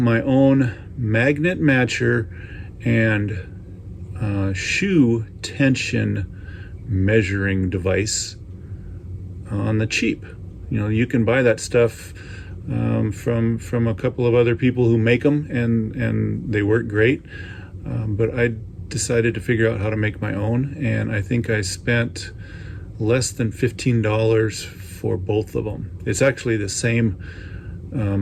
own magnet matcher and shoe tension measuring device on the cheap. You know, you can buy that stuff from a couple of other people who make them, and they work great. But I decided to figure out how to make my own, and I think I spent less than $15 for both of them. It's actually the same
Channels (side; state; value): both; identical; correlation 1.00